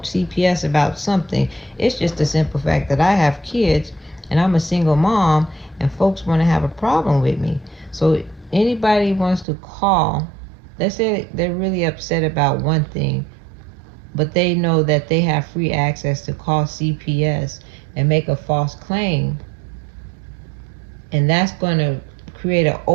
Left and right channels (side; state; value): left; drops out; at 9.5 s